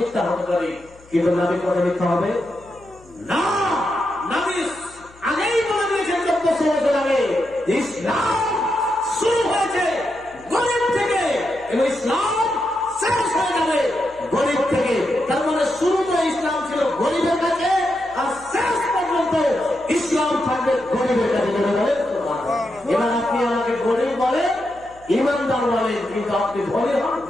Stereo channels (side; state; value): left; noise; hum, 26 dB below the sound